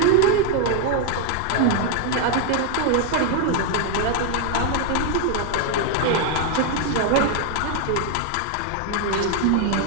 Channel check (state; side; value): different; both; correlation 0.00